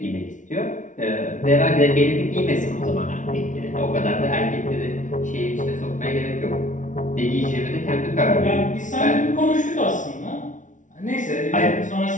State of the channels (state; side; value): late; right; 0.37 ms